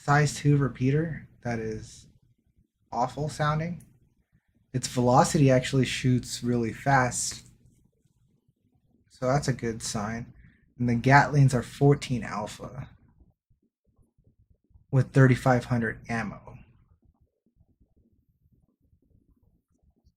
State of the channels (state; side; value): identical; both; correlation 1.00